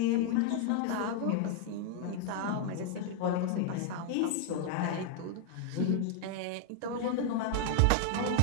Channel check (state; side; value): different; both; correlation 0.00